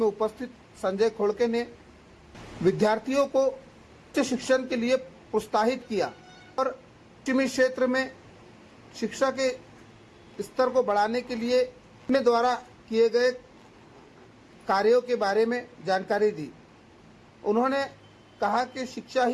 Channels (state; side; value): identical; both; correlation 1.00